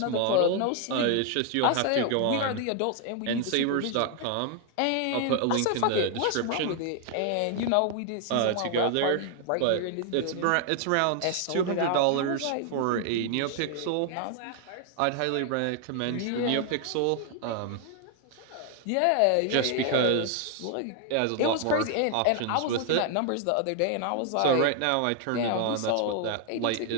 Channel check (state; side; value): different; both; correlation 0.00